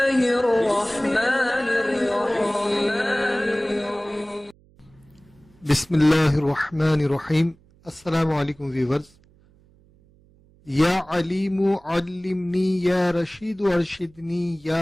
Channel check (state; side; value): noise; right; hum, 30 dB below the sound